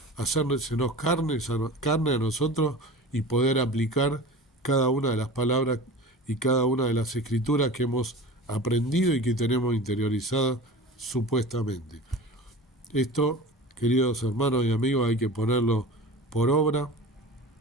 hacérsenos carne a nosotros y poder aplicar cada una de las palabras y cada una de las escrituras que hemos aprendido y que tenemos interiorizadas supuestamente. Esto, queridos hermanos y amigos, hay que ponerlo por obra.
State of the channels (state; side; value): normal; both; correlation 0.35